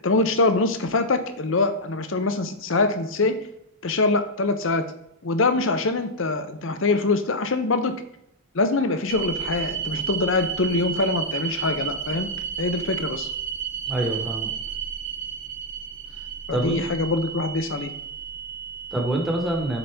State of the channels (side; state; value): both; normal; correlation -0.01